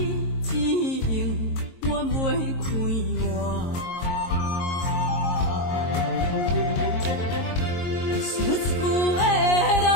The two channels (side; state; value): right; late; 22 ms